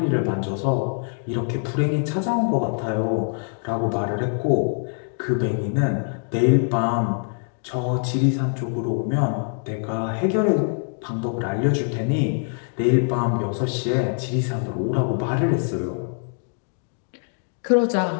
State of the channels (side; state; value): right; silent; 63 dB below the other